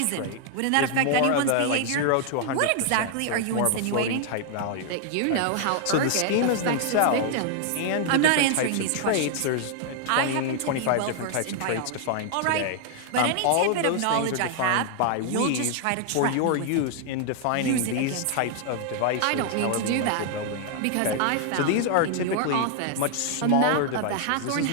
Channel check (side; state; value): both; different; correlation 0.00